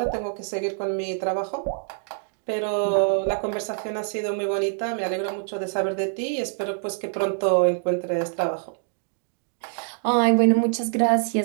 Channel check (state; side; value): silent; left; digital silence